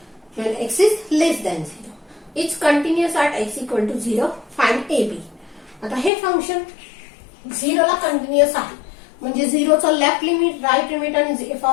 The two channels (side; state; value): right; drops out; at 6.1 s